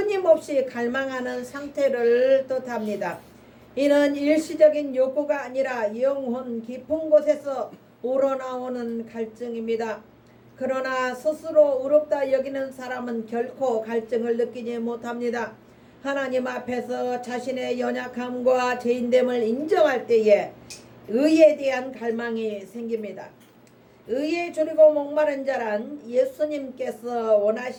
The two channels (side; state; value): both; identical; correlation 1.00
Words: 갈망하는 상태를 뜻합니다. 이는 일시적인 욕구가 아니라 영혼 깊은 곳에서 우러나오는 갈증입니다. 그러나 스스로 의롭다 여기는 사람은 결코 갈증을 느끼지 못합니다. 하나님 앞에서 자신의 연약함과 죄인됨을 인정할 때에 의에 대한 갈망이 생깁니다. 의에 줄이고 목마른 자란 예수님께서